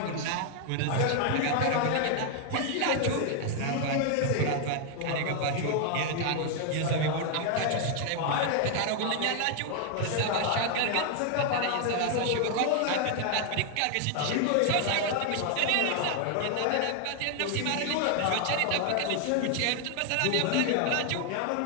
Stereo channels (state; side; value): different; both; correlation 0.00